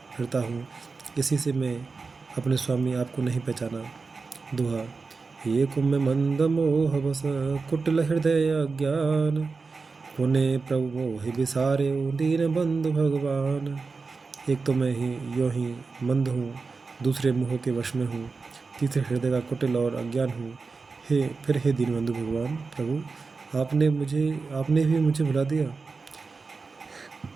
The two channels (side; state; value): left; quieter; 4.4 dB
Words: फिरता हूँ, इसी से मैं अपने स्वामी आपको नहीं पहचाना। दोहा। ये कुंभ मंद मोह बस, कुटिल हृदय अज्ञान। पुण्य प्रभु मोहि बिसारे, दीन बंधु भगवान। एक तो मैं यूँ ही मंद हूँ, दूसरे मोह के वश में हूँ, तीसरे हृदय का कुटिल और अज्ञान हूँ। हे दीनबंधु भगवान प्रभु, आपने भी मुझे भुला दिया।